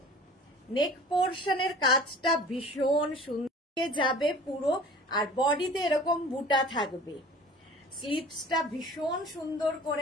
নেক পোর্শনের কাজটা ভীষণ সুন্দর যাবে পুরো, আর বডিতে এরকম বুটা থাকবে। স্লিভসটা ভীষণ সুন্দর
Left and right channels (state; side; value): normal; both; correlation 0.44